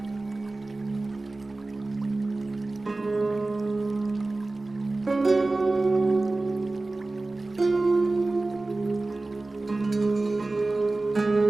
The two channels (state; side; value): quieter; left; 3.2 dB